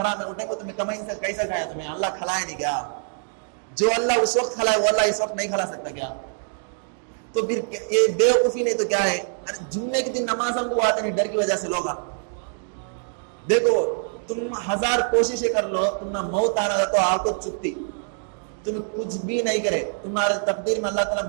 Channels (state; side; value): silent; left; 62 dB below the other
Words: میں اٹھے کو تمہیں کمائی سے کیسا کھایا, تمہیں اللہ کھلائے نہیں کیا؟ جو اللہ اس وقت کھلائے وہ اللہ اس وقت نہیں کھلا سکتا کیا؟ تو پھر یہ بیوقوفی نہیں تو کیا ہے؟ جمعے کے دن نماز ہم کو آتے نہیں ڈر کی وجہ سے لوگ. دیکھو تم 1000 کوششیں کر لو, تم نہ موت آنا تو آپ کو چپتی, تم کچھ بھی نہیں کرے, تمہارے تقدیر میں اللہ تعالیٰ